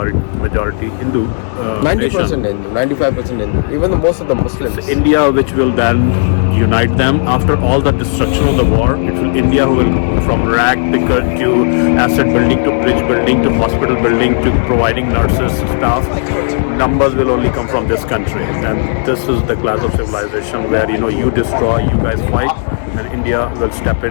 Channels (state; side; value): silent; right; 66 dB below the other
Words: Hindu. 90% Hindu, 95% Hindu, even most of the Muslims. It's India which will then unite them after all the destruction of the war. It will India who will, from rag picker to asset building to bridge building to hospital building to providing nurses, staff. Numbers will only come from this country, and this is the class of civilization where you destroy, you guys fight, and India will step